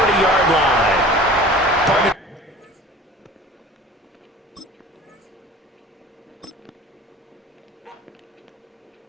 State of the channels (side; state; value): both; normal; correlation 0.42